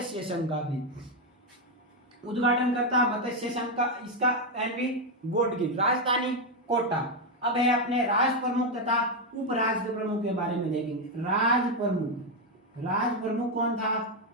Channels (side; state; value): both; normal; correlation 0.05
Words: संघ का भी उद्घाटन करता मत्स्य संघ का इसका एनवी गॉडगिल। राजधानी कोटा। अब है अपने राज प्रमुख तथा उप राज प्रमुख के बारे में देखेंगे। राज प्रमुख कौन था?